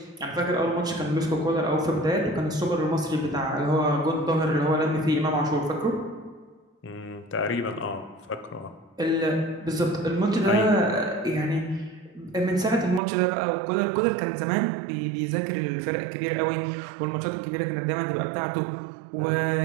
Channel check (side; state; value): left; drops out; at 13.0 s